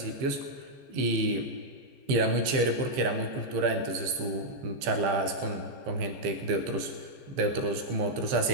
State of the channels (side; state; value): left; late; 15 ms